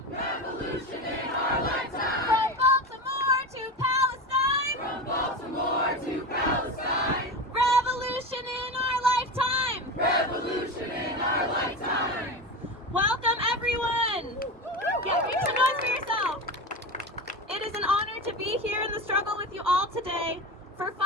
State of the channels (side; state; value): both; normal; correlation 0.24